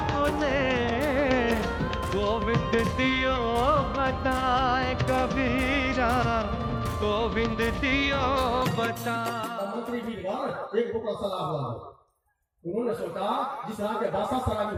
गोविंद दियो बताए कबीरा, गोविंद दियो बताए। मंत्री जी एक बोतल शराब ला दो। उन्होंने सोचा जिस तरह के भाषा शराबी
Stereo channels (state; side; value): identical; both; correlation 1.00